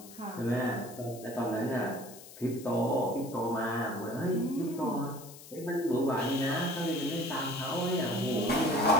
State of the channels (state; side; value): noise; left; hiss, 17 dB below the sound